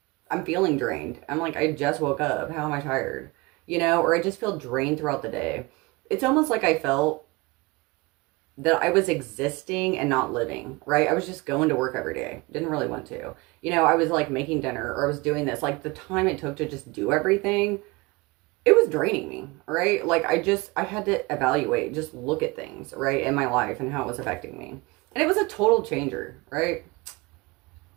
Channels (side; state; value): left; quieter; 24.1 dB